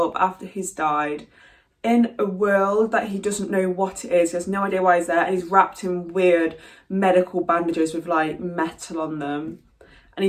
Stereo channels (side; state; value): both; identical; correlation 1.00